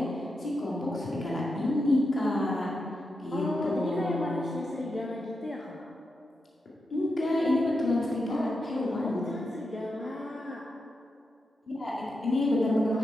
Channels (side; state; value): both; normal; correlation 0.86